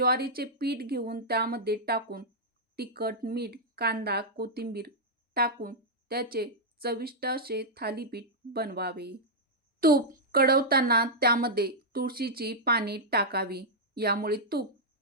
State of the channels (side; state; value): both; normal; correlation -0.06